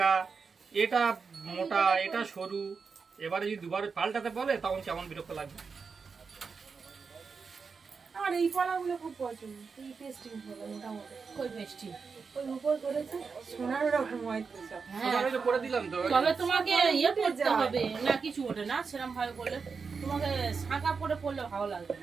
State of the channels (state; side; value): quieter; left; 5.2 dB